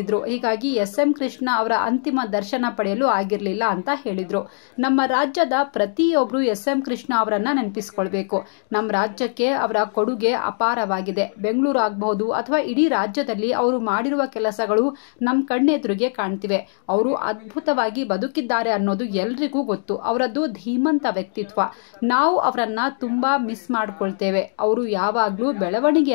ಹೀಗಾಗಿ ಎಸ್.ಎಂ. ಕೃಷ್ಣ ಅವರ ಅಂತಿಮ ದರ್ಶನ ಪಡೆಯಲು ಆಗಿರಲಿಲ್ಲ ಅಂತ ಹೇಳಿದ್ರು. ನಮ್ಮ ರಾಜ್ಯದ ಪ್ರತಿಯೊಬ್ಬರು ಎಸ್.ಎಂ. ಕೃಷ್ಣ ಅವರನ್ನ ನೆನಪಿಸಿಕೊಳ್ಬೇಕು. ನಮ್ಮ ರಾಜ್ಯಕ್ಕೆ ಅವರ ಕೊಡುಗೆ ಅಪಾರ. ಬೆಂಗಳೂರು ಆಗಬಹುದು ಅಥವಾ ಇಡೀ ರಾಜ್ಯದಲ್ಲಿ ಅವರು ಮಾಡಿರುವ ಕೆಲಸಗಳು ನಮ್ಮ ಕಣ್ಣೆದುರಿಗೆ ಕಾಣ್ತಿವೆ. ಅವರು ಅದ್ಭುತವಾಗಿ ಬದುಕಿದ್ದಾರೆ ಅನ್ನೋದು ಎಲ್ರಿಗೂ ಗೊತ್ತು. ಅವರದ್ದು ಧೀಮಂತ ವ್ಯಕ್ತಿತ್ವ. ನಾವು ಅವರನ್ನ ತುಂಬಾ ಮಿಸ್ ಮಾಡ್ಕೊಳ್ತೇವೆ. ಅವರು ಯಾವಾಗ್ಲೂ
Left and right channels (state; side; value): silent; right; digital silence